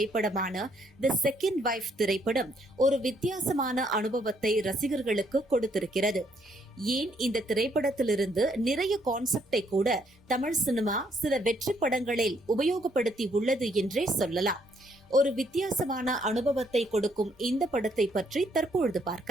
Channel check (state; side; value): normal; both; correlation 0.70